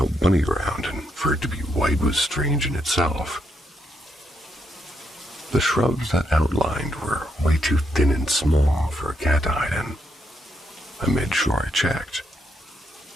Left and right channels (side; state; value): both; normal; correlation 0.78